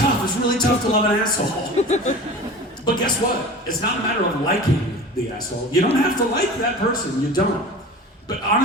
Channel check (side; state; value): both; normal; correlation 0.37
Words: It's really tough to love an asshole. But guess what? It's not a matter of liking the asshole. You don't have to like that person. You don't. But